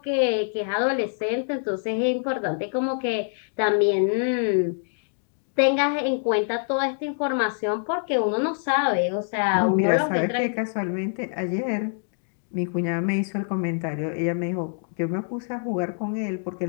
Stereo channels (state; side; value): silent; right; digital silence